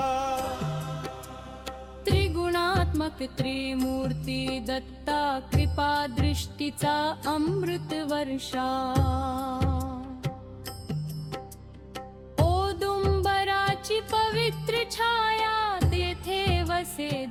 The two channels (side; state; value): both; identical; correlation 1.00